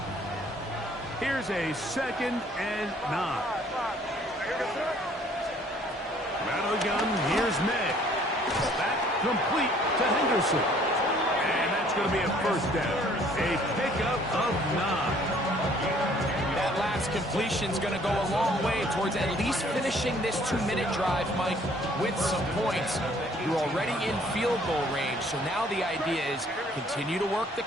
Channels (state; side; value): normal; both; correlation 0.59